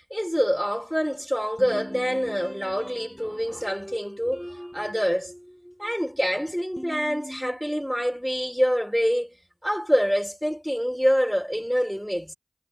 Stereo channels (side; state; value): both; identical; correlation 1.00